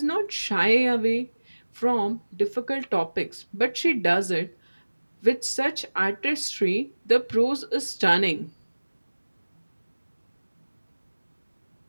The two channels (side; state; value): both; inverted; correlation -1.00